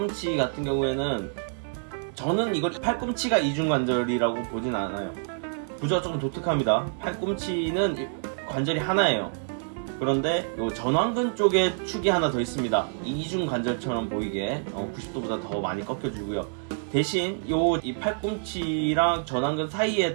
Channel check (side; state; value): left; silent; digital silence